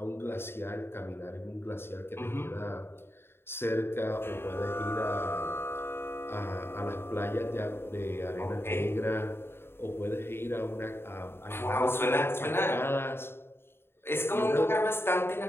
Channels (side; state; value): right; late; 0.11 ms